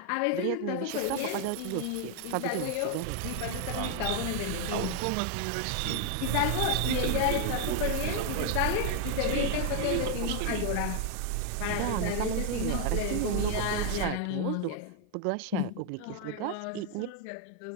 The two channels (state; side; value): different; both; correlation 0.00